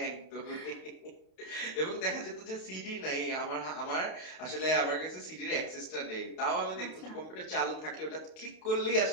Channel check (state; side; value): late; right; 32 ms